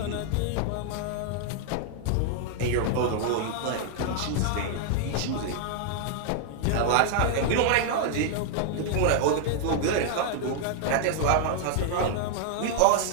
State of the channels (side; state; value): both; different; correlation -0.01